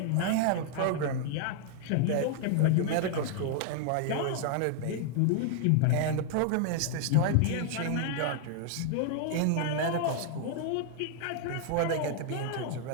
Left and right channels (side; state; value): both; different; correlation 0.00